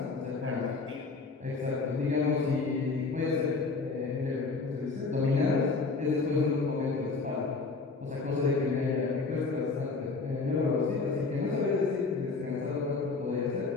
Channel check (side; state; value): right; quieter; 4.1 dB